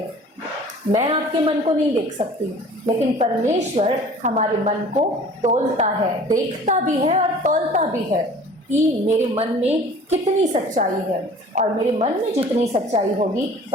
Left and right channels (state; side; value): normal; both; correlation 0.46